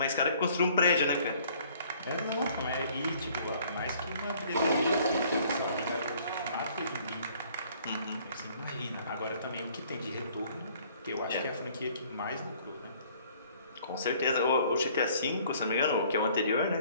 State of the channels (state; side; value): inverted; both; correlation -0.58